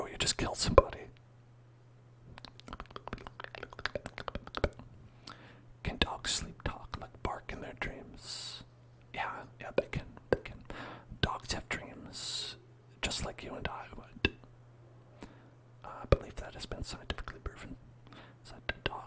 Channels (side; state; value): both; identical; correlation 1.00